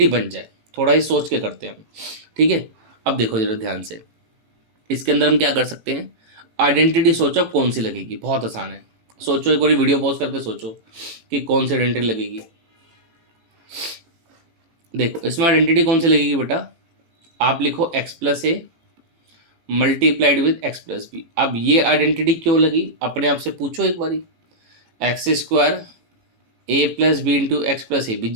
बन जाए। थोड़ा ही सोच के करते हैं हम, ठीक है। अब देखो जरा ध्यान से, इसके अंदर हम क्या कर सकते हैं, आइडेंटिटी सोचो कौन सी लगेगी, बहुत आसान है। सोचो, एक बार वीडियो पॉज करके सोचो कि कौन सी आइडेंटिटी लगेगी। देखो इसमें आइडेंटिटी कौन सी लगेगी बेटा, आप लिखो x + a multiplied with x + b। अब ये आइडेंटिटी क्यों लगी, अपने आप से पूछो एक बारी। x² a + b × x + a।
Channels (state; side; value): late; left; 18 ms